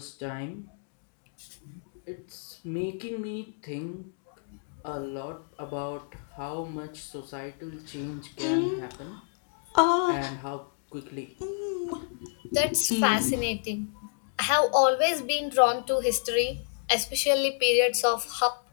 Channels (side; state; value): right; silent; digital silence